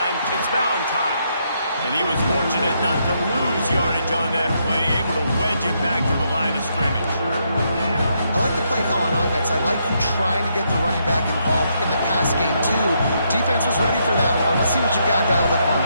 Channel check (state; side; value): inverted; both; correlation -0.77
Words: It's Valentine. And he was fortunate not to lose yardage on that play, able to wedge it back to the line of scrimmage. I like the play call on offense. I like you trying to get the running back involved in the pass game, too. Defense was ready for that one. Let's see what you got dialed up on